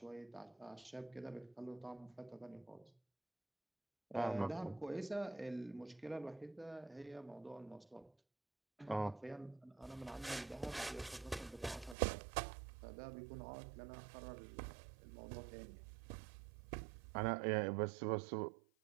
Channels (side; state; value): left; drops out; at 12.0 s